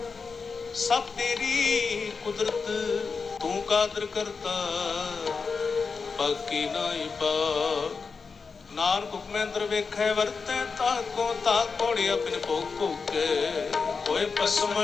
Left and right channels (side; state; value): right; quieter; 5.0 dB